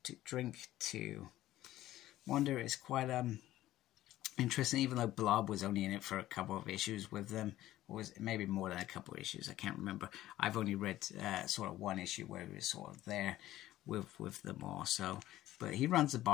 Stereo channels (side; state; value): right; quieter; 14.7 dB